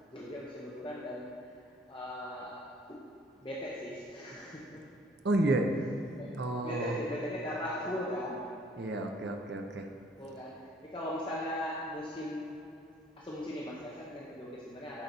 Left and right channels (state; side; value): normal; both; correlation 0.58